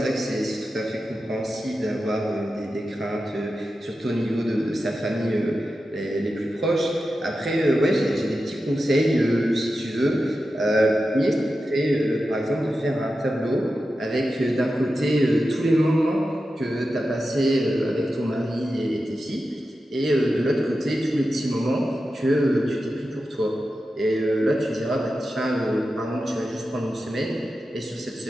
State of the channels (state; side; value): normal; both; correlation 0.91